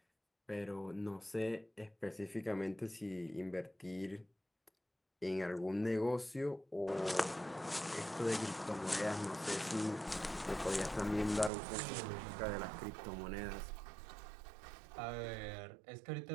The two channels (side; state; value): left; drops out; at 11.5 s